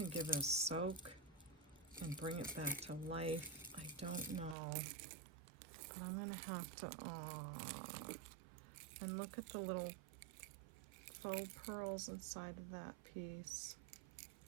give it a soak and bring it back to life. I don't know. But I'm gonna have to, and look at the little faux pearls inside of that piece.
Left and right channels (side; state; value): left; drops out; at 4.5 s